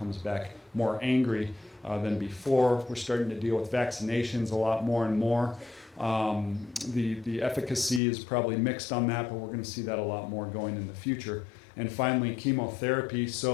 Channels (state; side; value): drops out; right; at 8.0 s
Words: back more angry than before. We're starting to deal with vaccinations a lot more and more. The efficacy is probably mixed on that, but we're going to see that a lot more going in the future. And finally, chemotherapy.